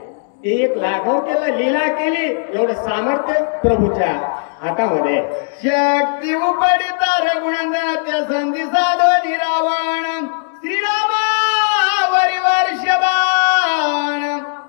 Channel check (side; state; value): right; silent; 68 dB below the other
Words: ते एक लाघव केलं, लीला केली. एवढं सामर्थ्य प्रभूच्या हातामध्ये. शक्ती उपडिता रघुनंदनाच्या संधी साधो रावण श्रीरामावरी वर्षबाण